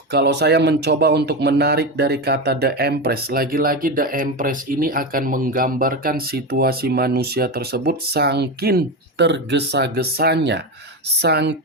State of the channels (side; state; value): both; normal; correlation 0.17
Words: Kalau saya mencoba untuk menarik dari kata The Empress, lagi-lagi The Empress ini akan menggambarkan situasi manusia tersebut saking tergesa-gesanya,